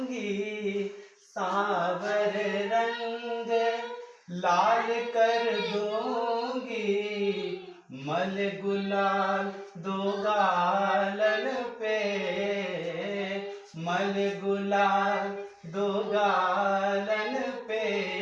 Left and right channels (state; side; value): identical; both; correlation 1.00